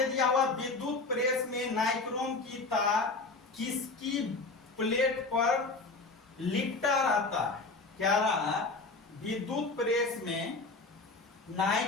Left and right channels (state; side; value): quieter; right; 3.7 dB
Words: दिया हुआ विद्युत प्रेस में नाइक्रोम की तार किसकी प्लेट पर लिपटा रहता है। क्या रहा, विद्युत प्रेस में